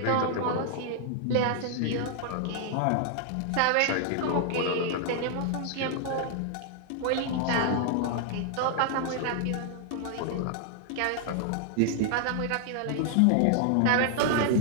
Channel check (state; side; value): different; both; correlation 0.00